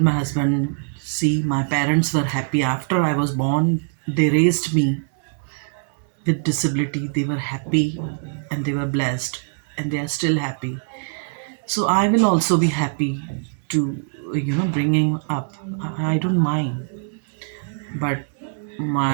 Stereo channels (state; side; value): silent; left; digital silence